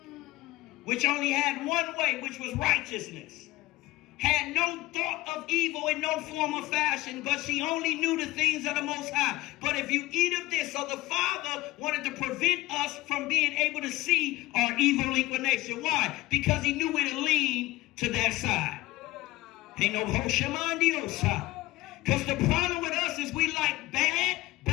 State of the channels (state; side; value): quieter; right; 18.8 dB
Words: which only had one way, which was righteousness. Had no thought of evil in no form or fashion, but she only knew the things of the Most High. But if you eat of this, so the Father wanted to prevent us from being able to see our evil inclination. Why? Because he knew it would lean to that side. Ain't no Hoshamandiosa. Because the problem with us is we like bad